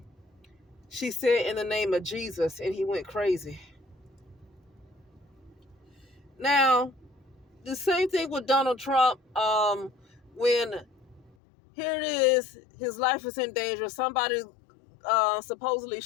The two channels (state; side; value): drops out; right; at 11.4 s